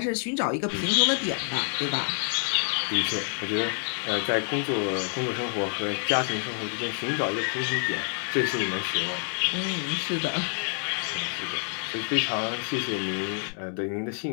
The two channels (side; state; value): right; silent; 56 dB below the other